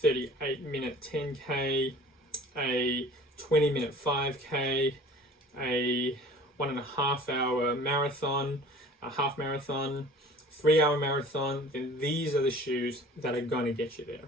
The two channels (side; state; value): both; normal; correlation 0.46